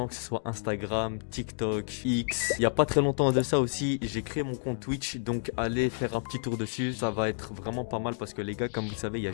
que ce soit Instagram, TikTok, X. Il y a pas très longtemps de ça aussi, j'ai créé mon compte Twitch, donc allez faire un petit tour dessus. Ça va être vraiment pas mal parce que les gars, comme vous le savez, il y a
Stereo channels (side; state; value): right; silent; digital silence